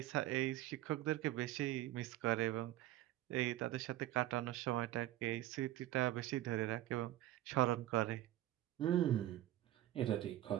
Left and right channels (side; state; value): left; quieter; 14.5 dB